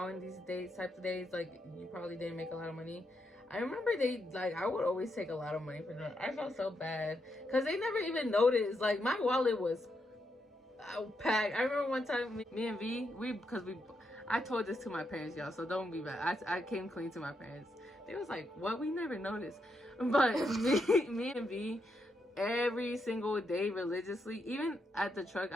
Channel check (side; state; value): both; normal; correlation 0.81